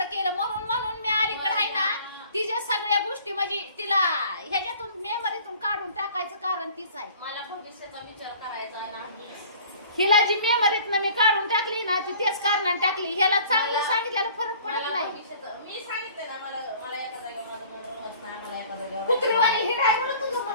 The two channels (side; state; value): both; inverted; correlation -0.50